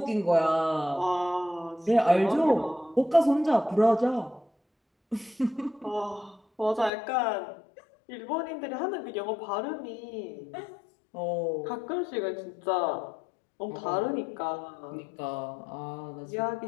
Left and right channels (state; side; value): drops out; right; at 6.9 s